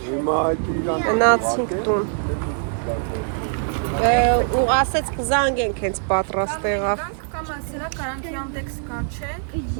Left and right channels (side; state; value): left; silent; 64 dB below the other